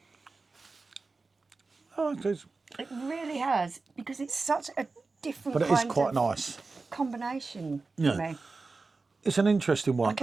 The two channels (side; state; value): left; quieter; 3.9 dB